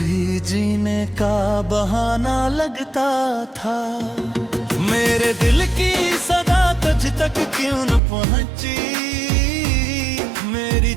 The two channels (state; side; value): drops out; left; at 8.0 s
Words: जीने का बहाना लगता था। मेरे दिल की सदा तुझ तक क्यों न पहुंची, मेरी